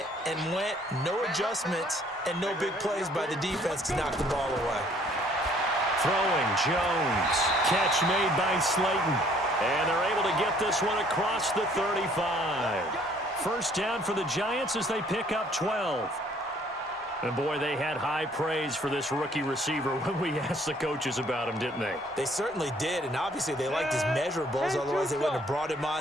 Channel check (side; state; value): both; normal; correlation 0.60